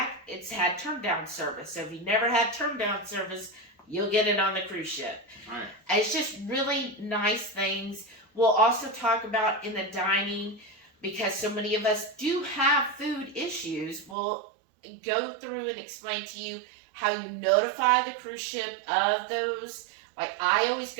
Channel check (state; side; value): drops out; left; at 14.2 s